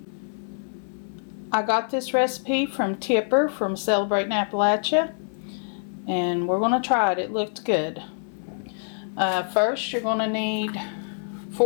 from Tipper from Celebrating Appalachia. And we're going to try it. It looked good. First, you're going to need,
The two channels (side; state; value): right; silent; digital silence